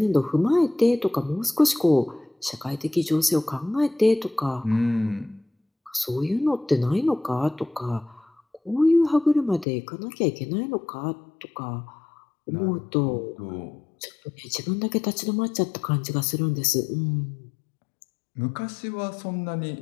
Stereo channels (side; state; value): right; drops out; at 9.7 s